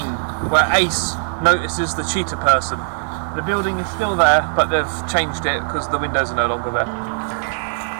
where Ace notices the cheetah person. The building is still there, but they've changed it because the windows are no longer there.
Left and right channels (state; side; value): silent; left; 57 dB below the other